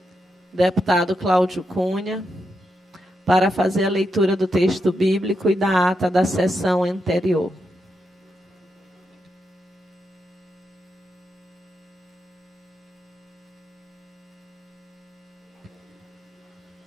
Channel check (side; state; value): both; normal; correlation 0.84